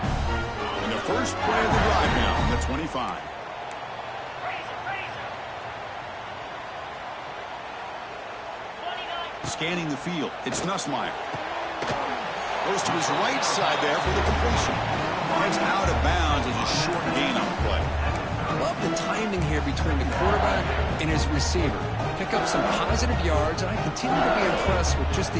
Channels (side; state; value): both; identical; correlation 1.00